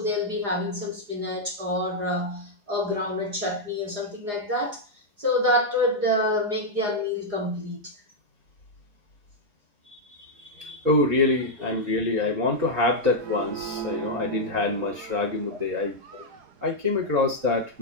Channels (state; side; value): late; left; 4.9 ms